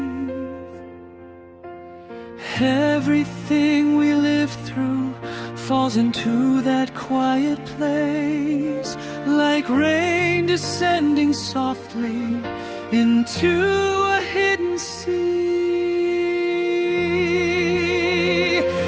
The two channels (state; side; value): identical; both; correlation 1.00